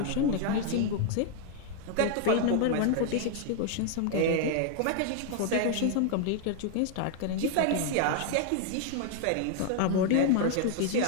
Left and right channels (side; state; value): both; different; correlation 0.00